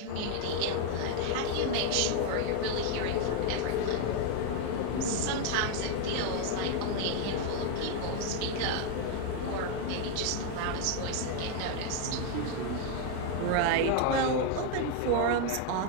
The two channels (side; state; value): both; different; correlation 0.01